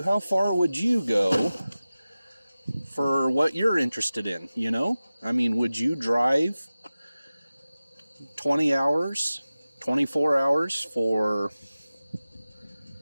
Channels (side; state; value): both; inverted; correlation -0.96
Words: how far would you go for what you're interested in, you know? I mean, would you drive 20 hours, 24 hours for,